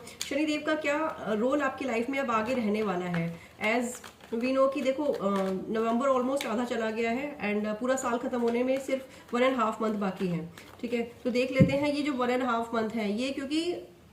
शनिदेव का क्या रोल आपकी लाइफ में अब आगे रहने वाला है। एज वी नो कि देखो नवंबर ऑलमोस्ट आधा चला गया है एंड पूरा साल खत्म होने में सिर्फ 1.5 मंथ बाकी है। ठीक है, तो देख लेते हैं ये जो 1.5 मंथ है ये, क्योंकि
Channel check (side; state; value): both; identical; correlation 1.00